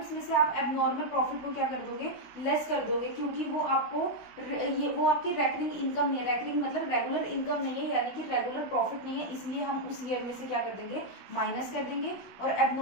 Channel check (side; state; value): right; late; 16 ms